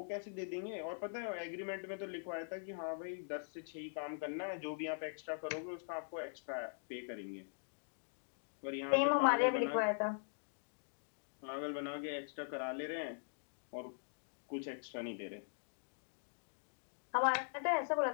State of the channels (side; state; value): right; silent; digital silence